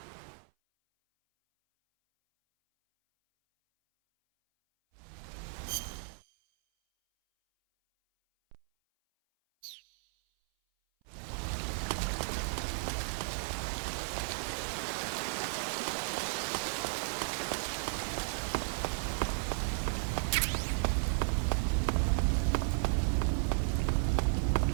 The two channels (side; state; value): left; silent; 55 dB below the other